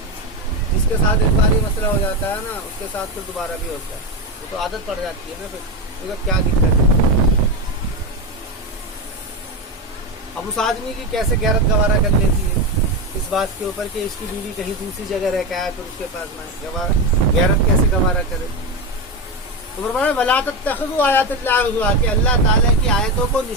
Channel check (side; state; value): both; normal; correlation 0.15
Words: जिसके साथ एक बार मसला हो जाता है ना, उसके साथ फिर दोबारा भी होता है, वो तो आदत पड़ जाती है ना, फिर तो क्या दिक्कत है। अब उस आदमी की कैसे गैरत गवारा कर लेती है इस बात के ऊपर कि इसकी बीवी कहीं दूसरी जगह रह के आया, फिर उसके पास में गैरत कैसे गवारा करे। तो फरमाया वला तत्तख़िज़ू आयातिल्लाहि हुज़वा, कि अल्लाह ताला की आयतों को,